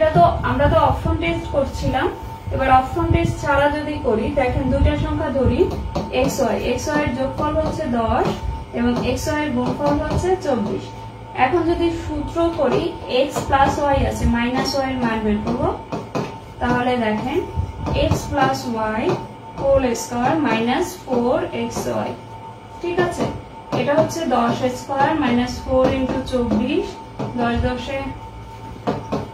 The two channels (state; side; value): identical; both; correlation 1.00